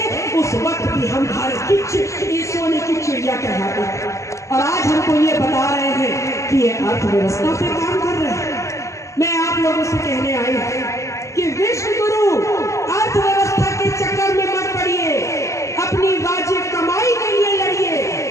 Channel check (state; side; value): late; right; 0.15 ms